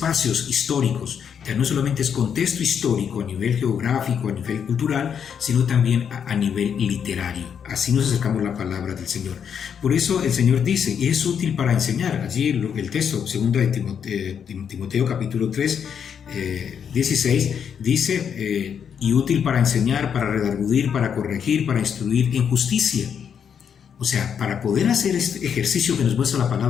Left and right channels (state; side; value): quieter; right; 7.7 dB